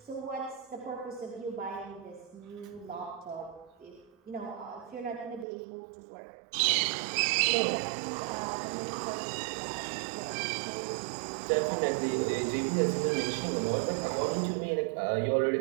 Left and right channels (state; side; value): drops out; left; at 5.5 s